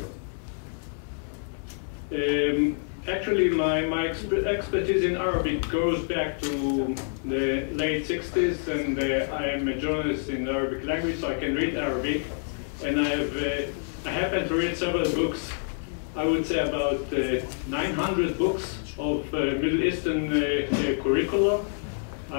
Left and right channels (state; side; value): silent; right; 60 dB below the other